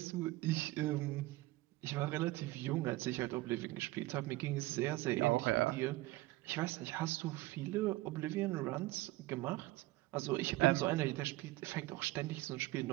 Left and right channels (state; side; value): quieter; left; 18.8 dB